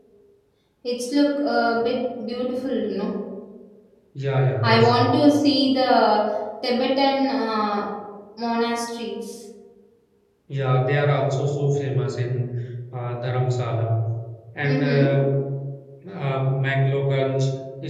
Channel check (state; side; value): identical; both; correlation 1.00